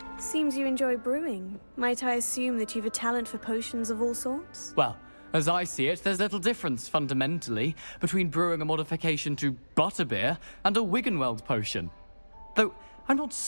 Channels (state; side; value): inverted; both; correlation -1.00